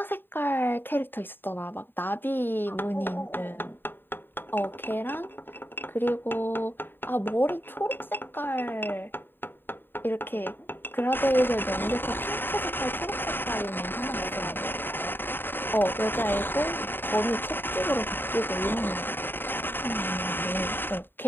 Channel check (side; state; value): right; late; 0.097 ms